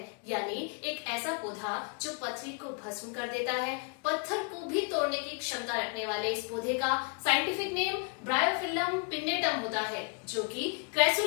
यानी एक ऐसा पौधा जो पथरी को भस्म कर देता है, पत्थर को भी तोड़ने की क्षमता रखने वाले इस पौधे का साइंटिफिक नेम ब्रायोफिल्लम पिन्नेटम होता है, जो कि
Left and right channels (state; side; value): quieter; right; 36.4 dB